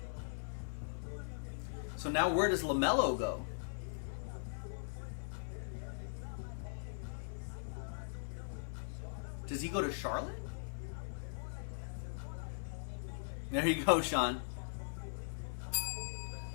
So now where does LaMelo go? Does he go to Charlotte? There you go, Sean.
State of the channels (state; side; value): silent; right; 51 dB below the other